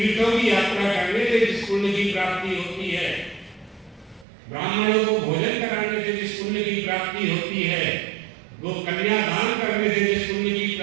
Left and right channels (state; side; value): drops out; left; at 4.2 s